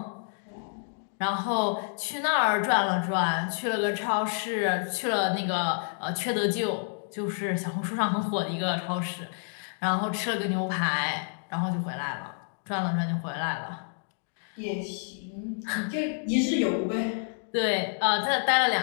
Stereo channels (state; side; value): silent; right; digital silence